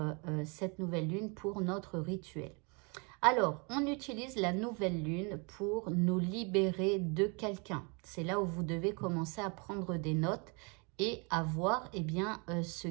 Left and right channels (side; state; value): left; quieter; 32.5 dB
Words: cette nouvelle lune pour notre rituel? Alors, on utilise la nouvelle lune pour nous libérer de quelqu'un. C'est là où vous devez commencer à prendre des notes et à voir ce